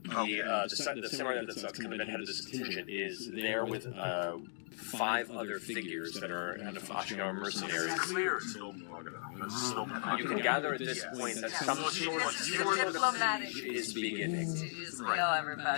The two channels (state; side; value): silent; right; digital silence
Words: The samurai that's kind of been head of this contingent is there with 5 other figures that are kind of Ashgar mercenaries. Clear. You can gather at this point that some sort of diplomatic is beginning. to just kill